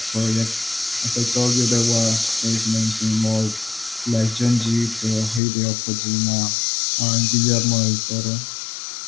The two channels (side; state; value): right; drops out; at 5.4 s